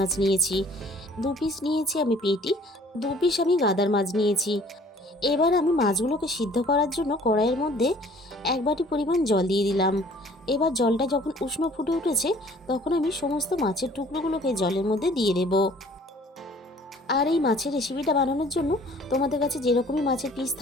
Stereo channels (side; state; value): both; normal; correlation 0.54